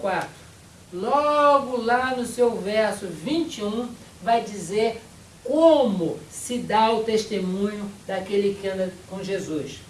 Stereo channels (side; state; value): both; identical; correlation 1.00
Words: logo lá no seu verso 21, vai dizer como se dá o testemunho daquele que anda com Jesus.